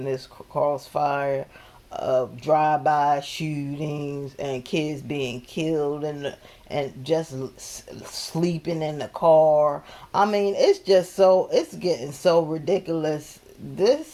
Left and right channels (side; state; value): both; identical; correlation 1.00